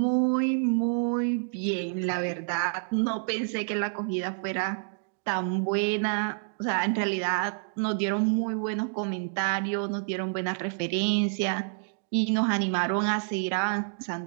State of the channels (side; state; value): left; silent; digital silence